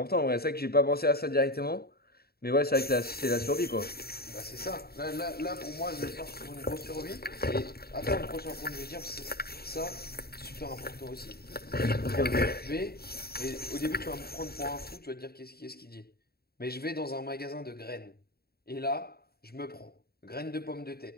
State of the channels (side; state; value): right; late; 0.45 ms